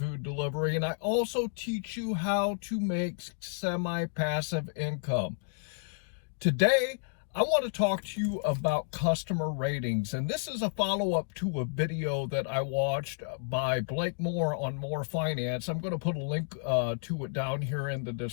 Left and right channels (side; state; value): right; silent; digital silence